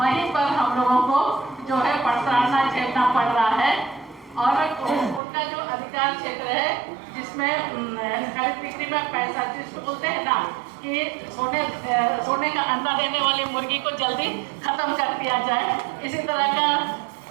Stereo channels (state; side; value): drops out; left; at 5.2 s